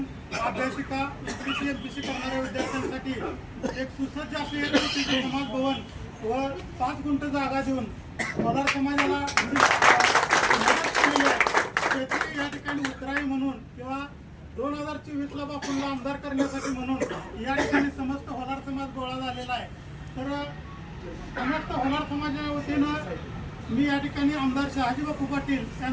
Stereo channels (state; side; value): identical; both; correlation 1.00